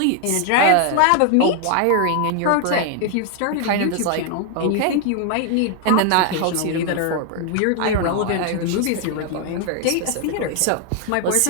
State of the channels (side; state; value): both; different; correlation 0.00